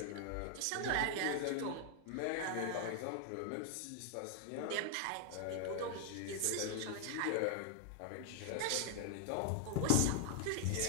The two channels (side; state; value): both; different; correlation 0.00